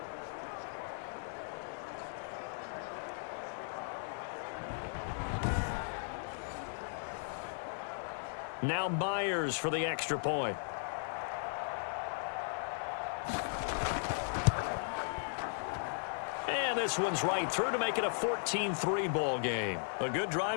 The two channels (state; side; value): silent; right; 53 dB below the other